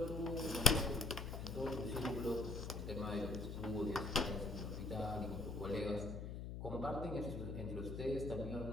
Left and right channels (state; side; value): noise; left; hum, 6 dB below the sound